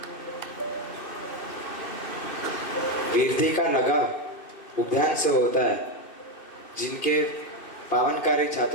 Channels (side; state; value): right; late; 2.6 ms